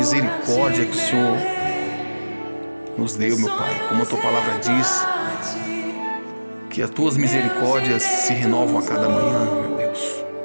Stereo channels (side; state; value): both; inverted; correlation -1.00